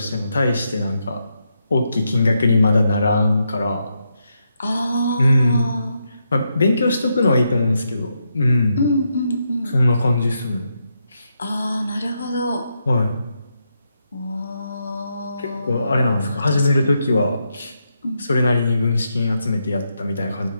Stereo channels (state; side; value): inverted; both; correlation -0.82